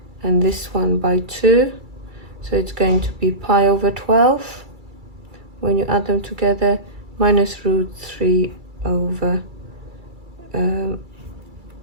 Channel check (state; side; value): late; left; 2.3 ms